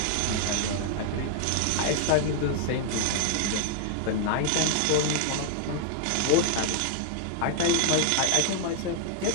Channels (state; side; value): different; both; correlation 0.00